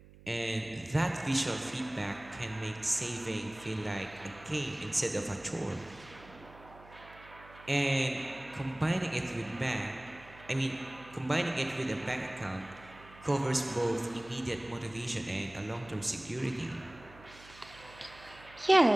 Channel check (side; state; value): right; noise; hum, 21 dB below the sound